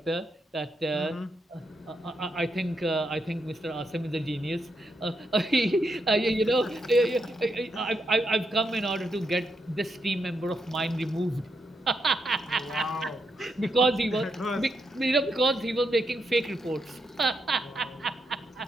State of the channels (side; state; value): both; normal; correlation 0.81